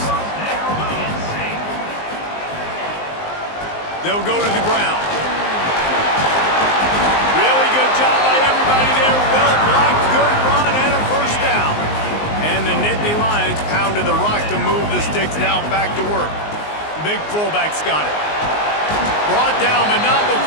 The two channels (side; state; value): right; late; 19 ms